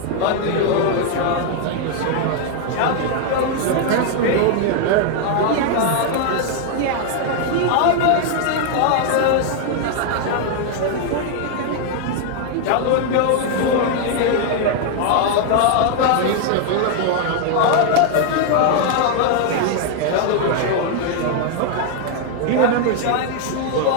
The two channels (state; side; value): different; both; correlation 0.00